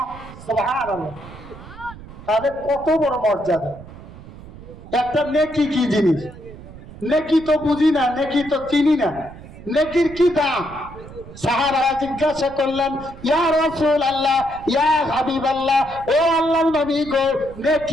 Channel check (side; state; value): right; noise; rumble, 17 dB below the sound